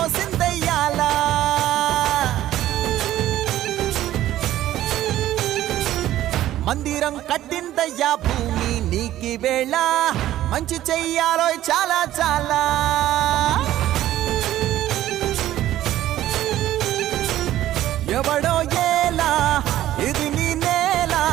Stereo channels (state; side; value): quieter; left; 13.6 dB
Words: సిందయ్యాలా మందిరం కట్టిందయ్యా భూమి నీకి వేళ మంచి చెయ్యాలో చాలా చాలా ఎవడో ఏలా ఇది నీ నేల